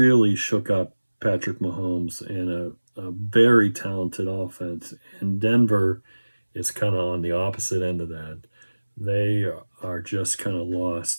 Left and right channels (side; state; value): both; inverted; correlation -1.00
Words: shook up Patrick Mahomes and a very talented offense. And Denver is kind of on the opposite end of that. They are just kind of